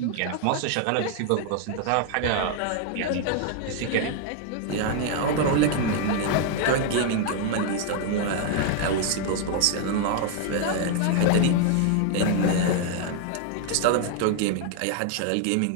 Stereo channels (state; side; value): different; both; correlation 0.00